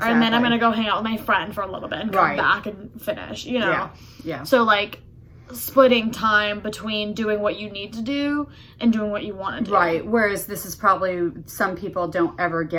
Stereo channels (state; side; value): identical; both; correlation 1.00